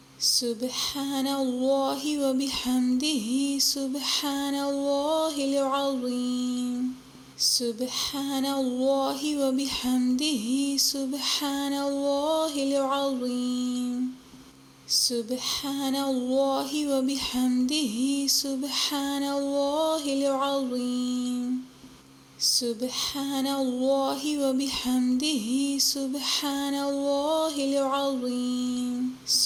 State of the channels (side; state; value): both; identical; correlation 1.00